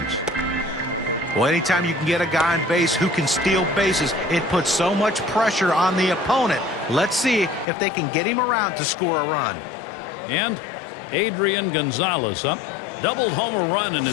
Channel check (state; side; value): drops out; right; at 7.7 s